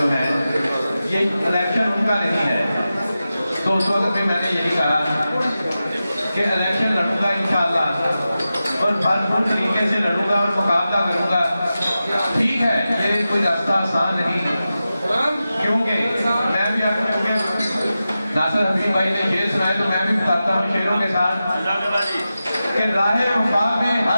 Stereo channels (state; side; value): inverted; both; correlation -0.93